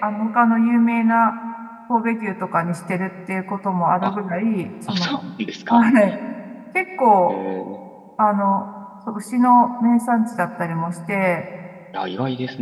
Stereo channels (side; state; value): both; identical; correlation 1.00